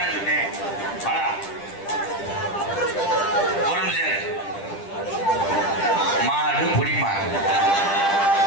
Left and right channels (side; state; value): right; late; 10 ms